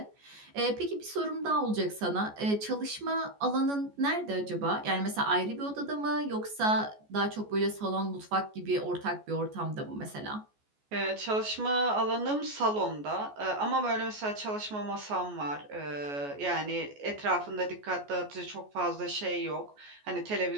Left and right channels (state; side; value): late; left; 14 ms